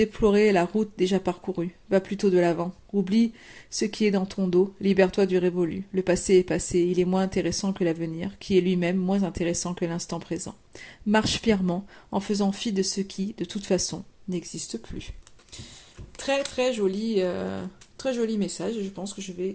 la route déjà parcourue. Va plutôt de l'avant. Oublie ce qui est dans ton dos, libère-toi du révolu. Le passé est passé, il est moins intéressant que l'avenir, qui est lui-même moins intéressant que l'instant présent. Marche fièrement, en faisant fi de ce qui, de toute façon, n'existe plus. Très très joli... Très joli message et je pense que je vais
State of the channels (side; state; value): both; identical; correlation 1.00